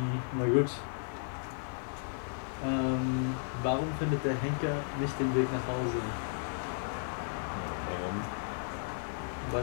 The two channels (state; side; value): silent; right; digital silence